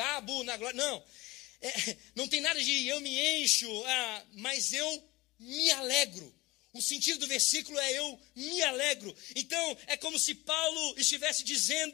na glória. Não. Não tem nada de eu me encho, mas eu me alegro. O sentido do versículo é eu me alegro. Então, é como se Paulo estivesse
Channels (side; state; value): right; quieter; 21.2 dB